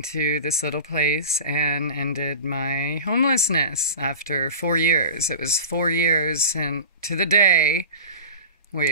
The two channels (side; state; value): both; inverted; correlation -0.33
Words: this little place and ended my homelessness after 4 years. It was 4 years and to the day,